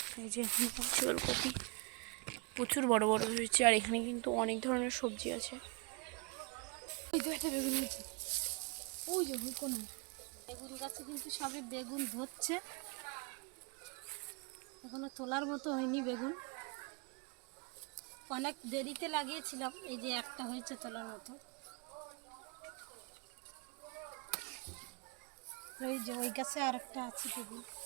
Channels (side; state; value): left; quieter; 31.6 dB